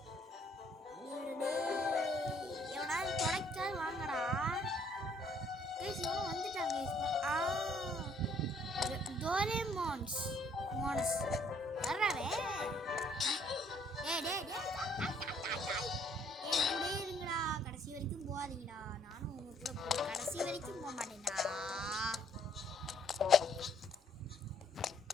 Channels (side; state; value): both; normal; correlation 0.64